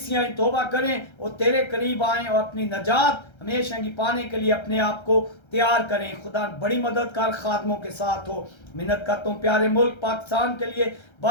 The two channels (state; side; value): late; right; 1.3 ms